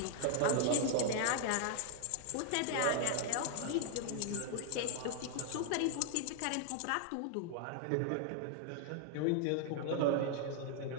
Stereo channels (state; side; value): different; both; correlation 0.00